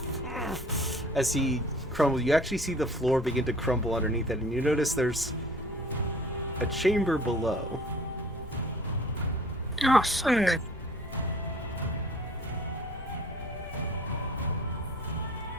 As he crumbles, you actually see the floor begin to crumble underneath it, and you notice there's a chamber below. Oh, fuck.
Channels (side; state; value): both; normal; correlation 0.49